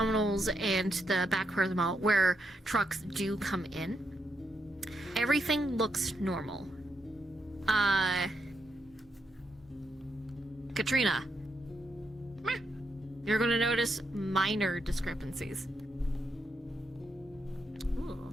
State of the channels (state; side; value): normal; both; correlation 0.81